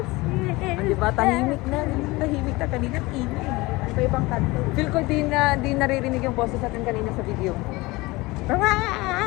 see? Di ba? Tahimik na. Tahimik na kanina. Ingay. Sa ibang kanto. Feel ko di naririnig yung boses natin kanina sa video.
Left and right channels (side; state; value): right; quieter; 22.0 dB